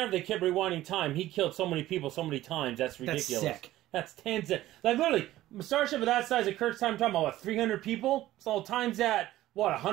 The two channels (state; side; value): quieter; left; 15.0 dB